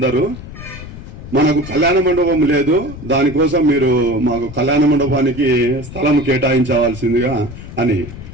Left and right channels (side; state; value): left; noise; rumble, 13 dB below the sound